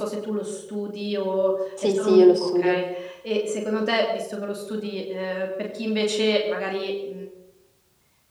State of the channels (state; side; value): identical; both; correlation 1.00